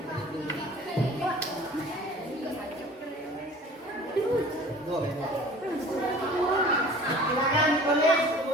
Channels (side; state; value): both; normal; correlation 0.45